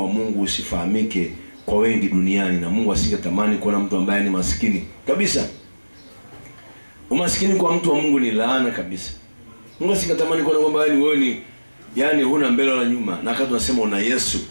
Mungu usifahamike kwa wengi duniani, na Mungu asingetamani kuona mtu ambaye ni maskini kabisa. Umaskini kwa mtu wa Mungu ni laana kabisa. Mungu asingetamani kuona kwamba wewe ni huna mbele wala nyuma, na wakati tunasema una Yesu.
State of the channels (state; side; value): inverted; both; correlation -1.00